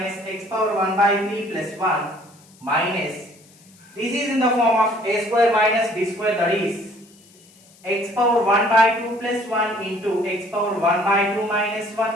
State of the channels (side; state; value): left; noise; hiss, 27 dB below the sound